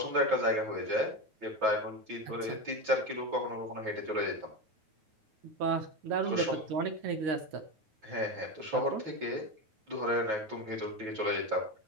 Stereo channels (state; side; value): late; left; 9.3 ms